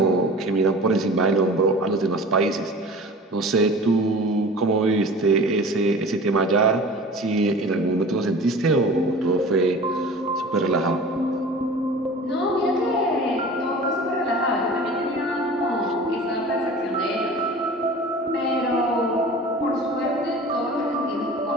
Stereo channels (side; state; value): both; normal; correlation 0.39